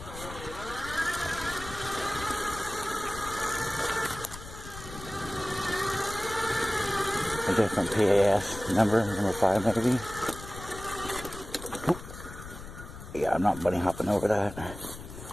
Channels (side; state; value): left; noise; rumble, 13 dB below the sound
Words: different PAS number 5 maybe. Oop. Yeah, I'm not bunny hopping over that.